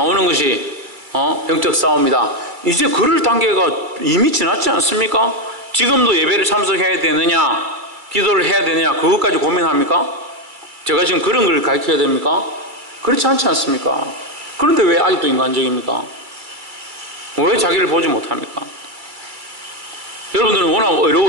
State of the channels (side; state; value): left; late; 2.3 ms